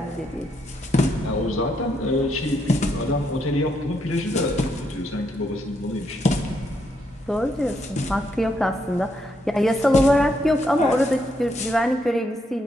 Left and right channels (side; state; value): both; normal; correlation 0.77